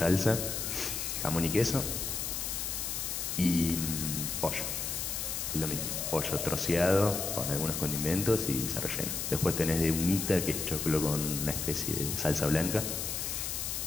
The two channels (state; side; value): noise; left; hiss, 3 dB below the sound